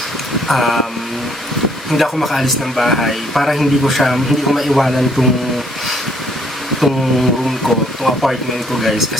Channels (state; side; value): normal; both; correlation 0.65